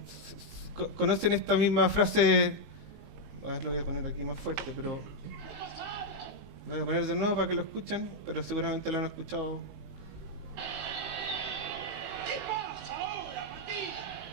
conocen esta misma frase. A ver, lo voy a poner aquí más fuerte, pero lo voy a poner de nuevo para que lo escuchen, pero seguramente lo han escuchado.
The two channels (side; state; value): left; late; 19 ms